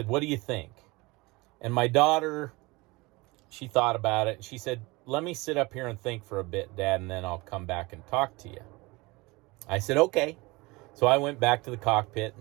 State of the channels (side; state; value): left; quieter; 23.4 dB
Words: what do you think? And my daughter, she thought about it. She said, let me sit up here and think for a bit, Dad, and then I'll come back and talk to you. I said, okay. So I went back to the cockpit,